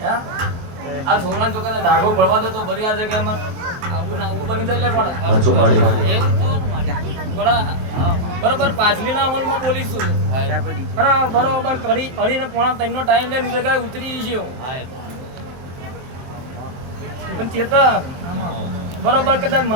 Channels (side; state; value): left; late; 23 ms